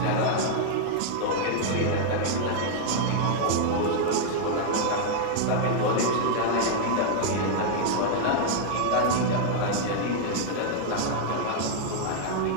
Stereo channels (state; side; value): different; both; correlation -0.01